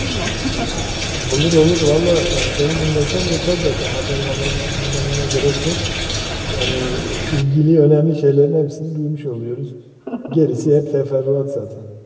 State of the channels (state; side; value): identical; both; correlation 1.00